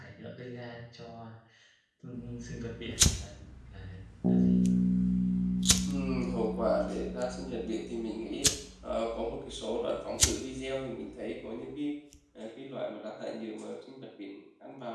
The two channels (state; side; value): identical; both; correlation 1.00